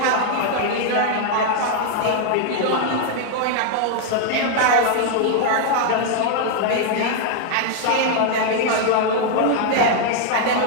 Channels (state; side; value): different; both; correlation 0.00